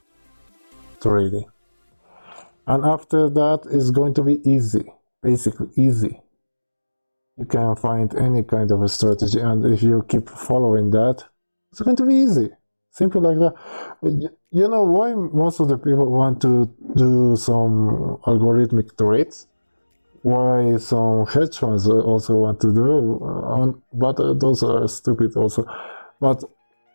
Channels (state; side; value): inverted; both; correlation -1.00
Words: trading. And after that, it's going to be easy, basically easy. You can find any kind of a strategy, and if you keep following that, it's going to be easy, simple like that. You know why most of the people want to do some algorithmic trades? Why some hedge funds also want to do, but those are stupid also. But